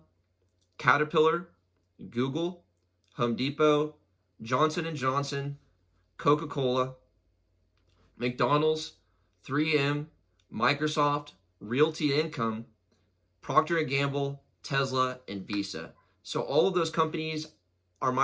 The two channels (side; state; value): both; identical; correlation 1.00